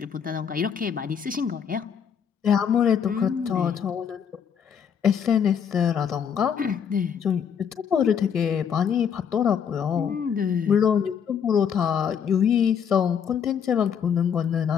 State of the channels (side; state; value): right; quieter; 7.6 dB